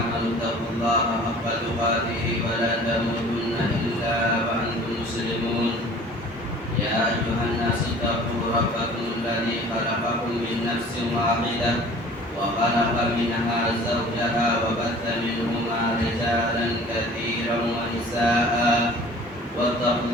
اتقوا الله حق تقاته ولا تموتن إلا وأنتم مسلمون يا أيها الناس اتقوا ربكم الذي خلقكم من نفس واحدة وخلق منها زوجها وبث منهما رجالا كثيرا ونساء واتقوا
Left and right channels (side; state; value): both; normal; correlation 0.47